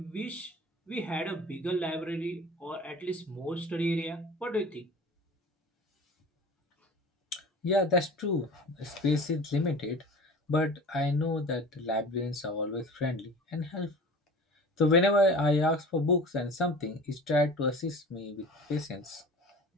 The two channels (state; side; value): normal; both; correlation 0.39